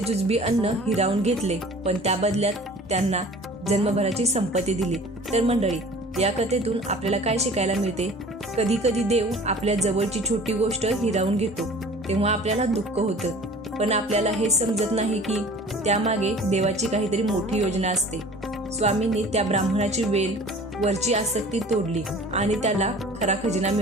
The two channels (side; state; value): both; normal; correlation 0.45